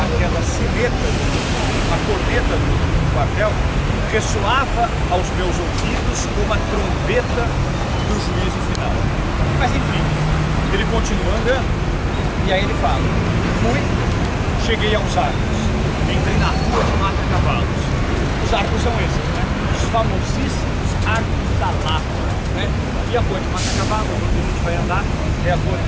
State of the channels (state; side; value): identical; both; correlation 1.00